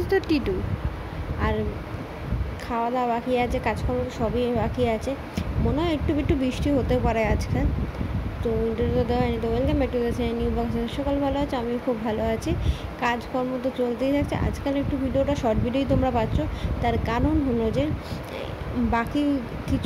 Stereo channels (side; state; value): both; identical; correlation 1.00